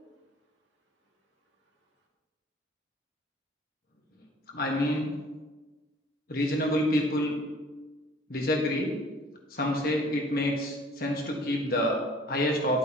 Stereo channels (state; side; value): normal; both; correlation 0.52